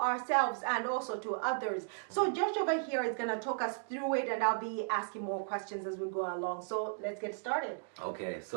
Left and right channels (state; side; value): silent; left; digital silence